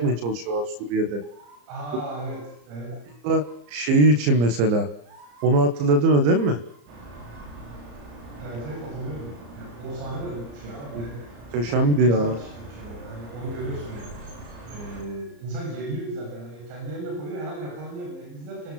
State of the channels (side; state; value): left; late; 34 ms